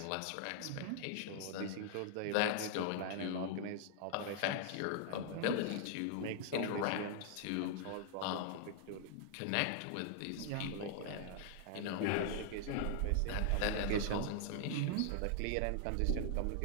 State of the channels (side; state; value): both; different; correlation -0.01